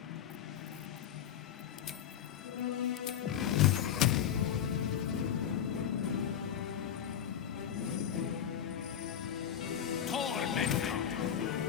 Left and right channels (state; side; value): quieter; right; 9.4 dB